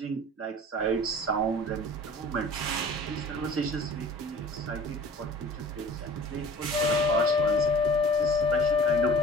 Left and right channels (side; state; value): both; normal; correlation 0.44